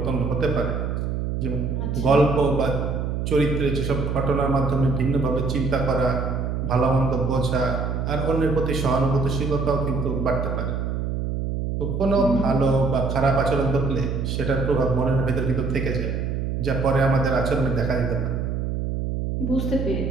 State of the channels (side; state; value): right; noise; hum, 2 dB below the sound